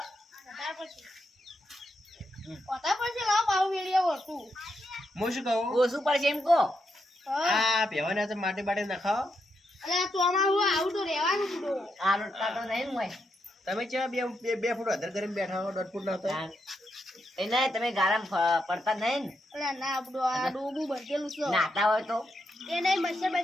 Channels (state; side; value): normal; both; correlation 0.82